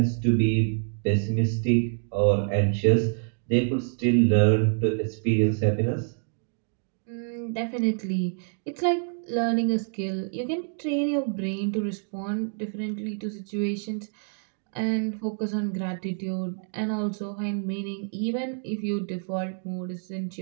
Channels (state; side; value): silent; left; 60 dB below the other